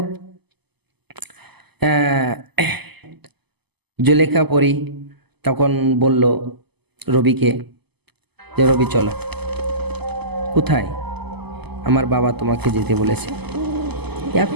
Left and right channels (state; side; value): late; left; 0.98 ms